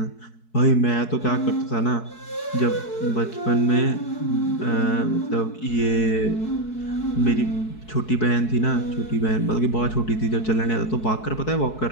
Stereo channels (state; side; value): late; right; 4.7 ms